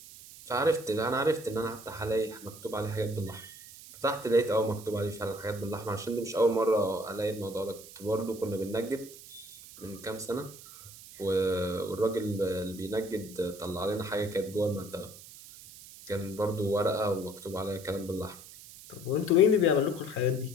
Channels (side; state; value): right; noise; hiss, 17 dB below the sound